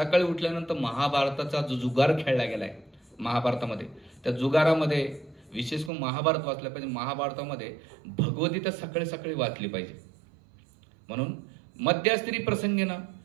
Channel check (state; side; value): drops out; left; at 5.9 s